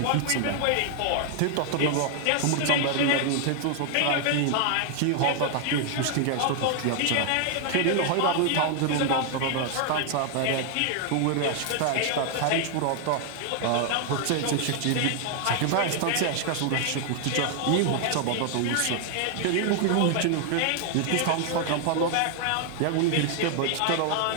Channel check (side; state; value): both; different; correlation 0.00